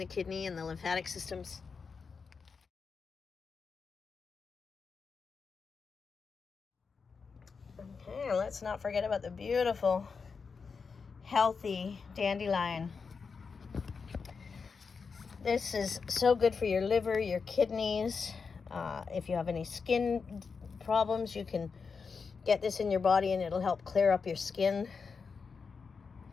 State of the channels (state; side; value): quieter; right; 5.3 dB